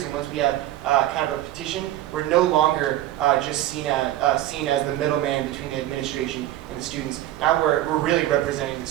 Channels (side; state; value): left; quieter; 14.0 dB